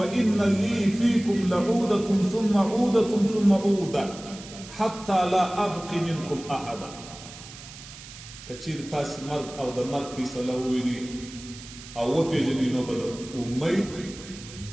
لي فيكم لعودة ثم عودة ثم عودة حتى لا أبقي منكم أحدا كثير تاس مرد أو د مرد فیصله وویني او وپیژني نو به د امید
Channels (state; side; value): noise; right; hiss, 16 dB below the sound